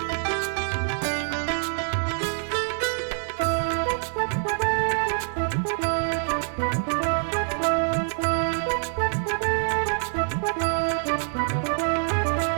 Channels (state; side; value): silent; left; 61 dB below the other